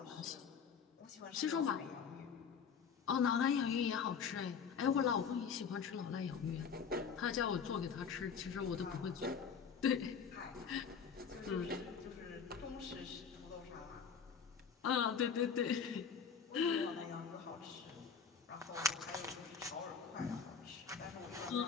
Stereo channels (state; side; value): quieter; right; 6.4 dB